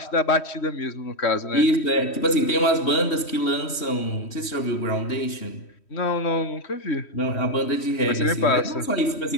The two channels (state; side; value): late; right; 3.1 ms